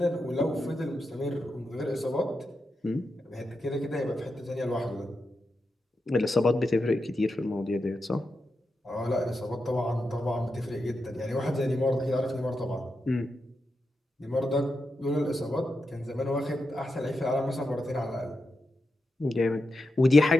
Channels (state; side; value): normal; both; correlation 0.88